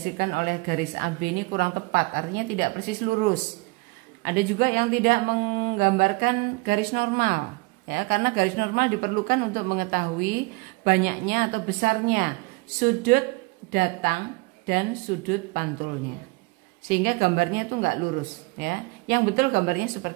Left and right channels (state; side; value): quieter; left; 26.3 dB